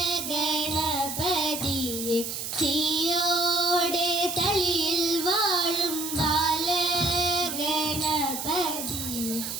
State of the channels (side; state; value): right; noise; hiss, 5 dB below the sound